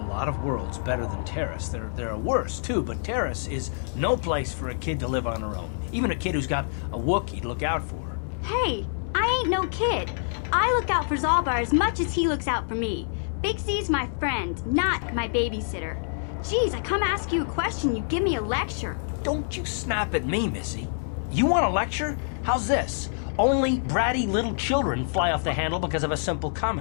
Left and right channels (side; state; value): right; silent; digital silence